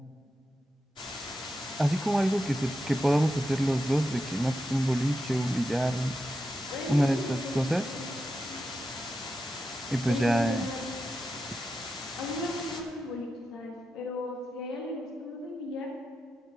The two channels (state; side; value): normal; both; correlation 0.89